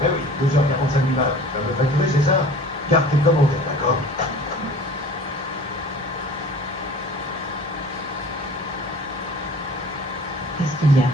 oui, 12h45 minutes. Tu vas me facturer, c'est ça? Garde tes commentaires, d'accord? Qu'est-ce qu'il y a?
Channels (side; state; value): both; normal; correlation 0.44